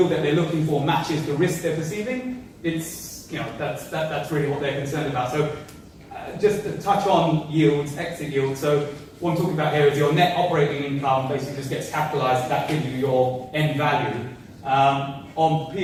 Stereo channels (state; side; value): identical; both; correlation 1.00